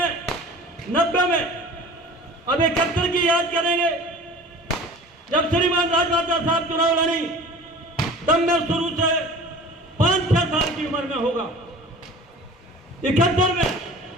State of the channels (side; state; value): both; normal; correlation 0.41